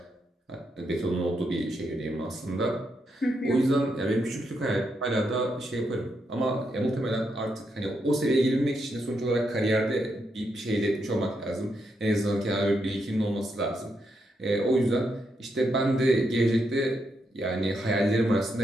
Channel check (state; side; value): normal; both; correlation 0.81